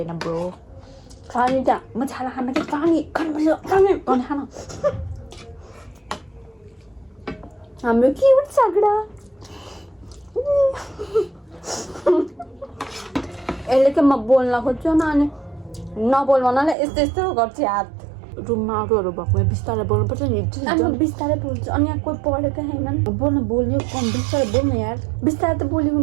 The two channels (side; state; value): left; drops out; at 16.8 s